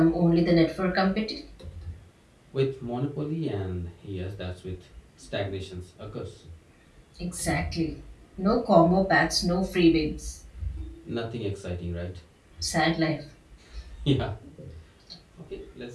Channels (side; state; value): both; identical; correlation 1.00